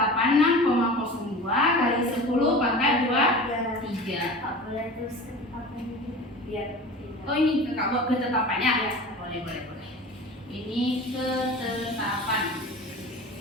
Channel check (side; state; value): both; normal; correlation 0.36